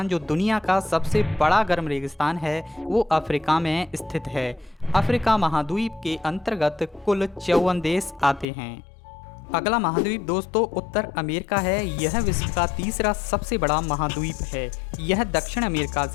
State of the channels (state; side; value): drops out; right; at 8.5 s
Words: जो दुनिया का सबसे बड़ा गर्म रेगिस्तान है वो अफ्रीका में स्थित है। अफ्रीका महाद्वीप के अंतर्गत कुल 54 देश आते हैं। अगला महाद्वीप दोस्तों उत्तर अमेरिका है। यह विश्व का तीसरा सबसे बड़ा महाद्वीप है। यह दक्षिण अमेरिका